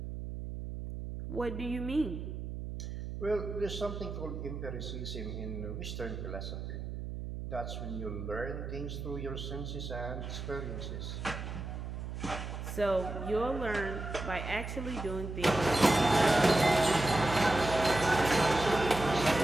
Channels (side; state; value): right; noise; hum, 7 dB below the sound